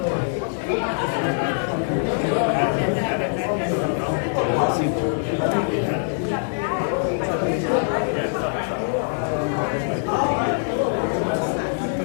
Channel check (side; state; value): right; silent; digital silence